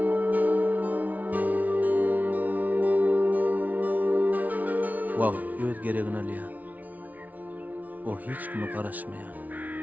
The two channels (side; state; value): left; late; 0.075 ms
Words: Wagt öz geregini alýar. O hiç kime garaşmaýar.